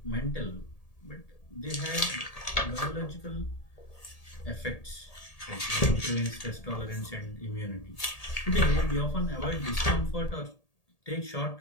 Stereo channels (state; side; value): late; right; 1.8 ms